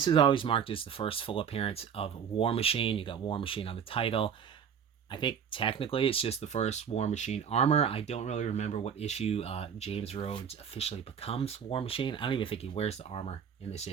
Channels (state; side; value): quieter; left; 7.5 dB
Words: is always marked as the first full appearance of War Machine. You got War Machine on the title. I think technically it's just the first War Machine armor. I don't really remember what issue James Rhodes officially becomes War Machine. I don't even think he wears the armor in this